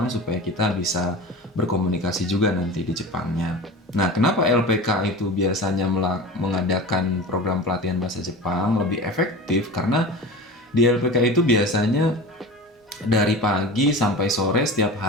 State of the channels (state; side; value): normal; both; correlation 0.32